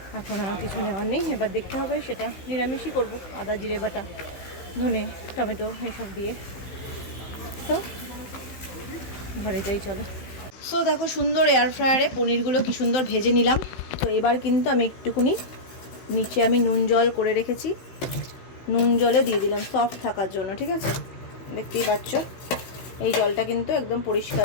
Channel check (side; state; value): right; late; 16 ms